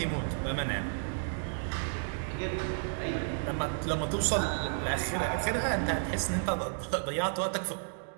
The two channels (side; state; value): left; silent; digital silence